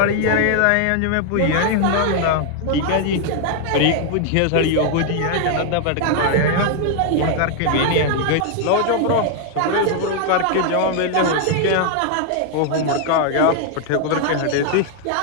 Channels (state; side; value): different; both; correlation 0.00